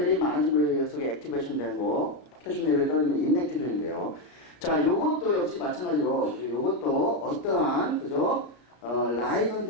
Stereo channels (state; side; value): late; right; 33 ms